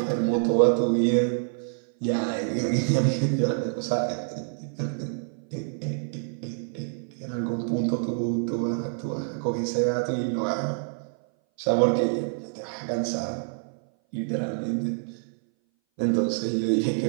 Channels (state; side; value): silent; left; 58 dB below the other